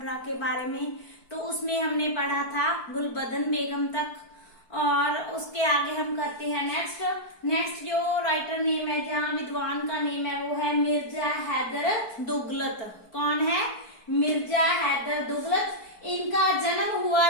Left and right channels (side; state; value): right; late; 4.6 ms